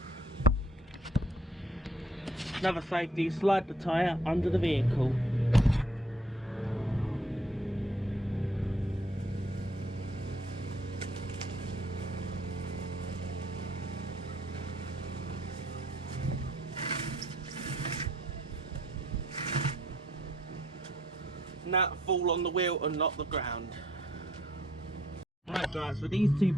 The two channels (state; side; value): normal; both; correlation 0.64